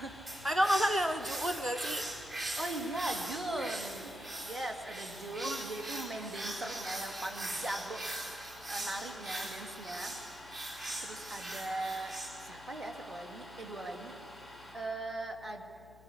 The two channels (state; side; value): noise; left; hum, 22 dB below the sound